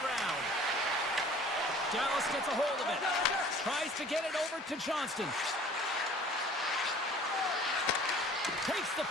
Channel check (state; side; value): normal; both; correlation 0.49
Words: Dallas gets a hold of it. Tries to get it over to Johnston. Takes the